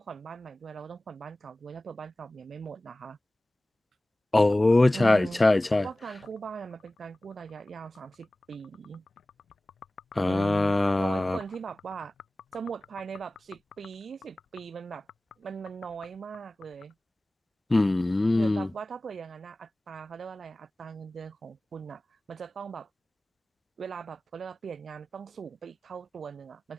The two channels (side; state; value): both; normal; correlation 0.97